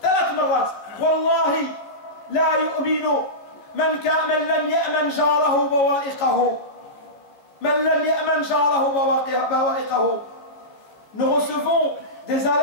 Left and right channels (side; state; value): right; late; 14 ms